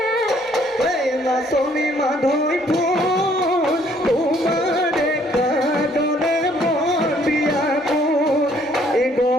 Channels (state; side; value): normal; both; correlation 0.63